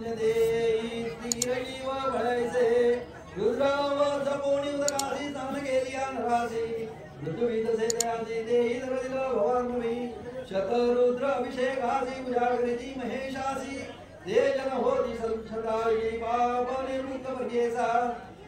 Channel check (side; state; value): both; identical; correlation 1.00